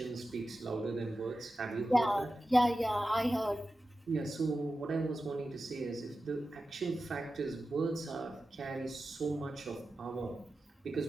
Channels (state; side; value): normal; both; correlation 0.93